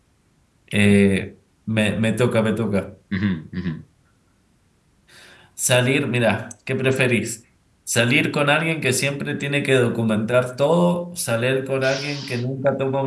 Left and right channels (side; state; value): both; identical; correlation 1.00